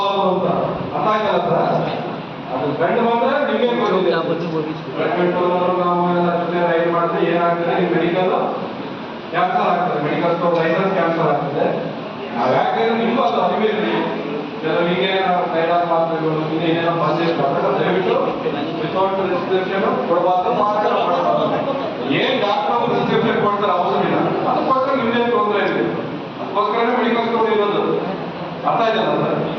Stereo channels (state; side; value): identical; both; correlation 1.00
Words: ಅಂತ ಅರ್ಥ ಆಯ್ತಲ್ಲ ಸರ್. ಅದು ಗಂಡು ಬಂದ್ರೆ ನಿಮಗೆ ನಾವು ರೈಡ್ ಮಾಡಿದ್ರೆ ಏನಾಗ್ತದೆ, ಮೆಡಿಕಲ್ ಕ್ಯಾನ್ಸಲ್ ಆಗ್ತದೆ, ಮೆಡಿಕಲ್ ಸ್ಟೋರ್ ಲೈಸೆನ್ಸ್ ಕ್ಯಾನ್ಸಲ್ ಆಗ್ತದೆ. ನಾವು ಯಾಕಂದ್ರೆ ನಿಮ್ಗೂ ಅದು ಅರಿವಿರಲಿ, ಕೆಲವರಿಗೆ ಕೈಲಾದ ಮಾತ್ರೆಗಳು ಇನ್ನೇನೇನೋ ಬಂದಿರ್ತಾರೆ, ದಯವಿಟ್ಟು ವಿತೌಟ್ ರಿಸ್ಟ್ರಿಕ್ಷನ್ ಕೊಡಬಾರ್ದು. ಏನ್ ಡಾಕ್ಟರ್ ರಿಸ್ಟ್ರಿಕ್ಷನ್ ಕೊಡ್ತಾರೆ ಅವಸರ ಇಲ್ಲ, ಅದಕ್ಕೋಸ್ಕರ ನಿಮ್ದೇನು ತೊಂದರೆ ಇದೆ, ಅದಕ್ಕೋಸ್ಕರನೇ ಮೆಡಿಕಲ್ ಸ್ಟೋರ್ ಇರೋದು. ಅರ್ಥ ಇದೆಯಲ್ಲ ಸರ್.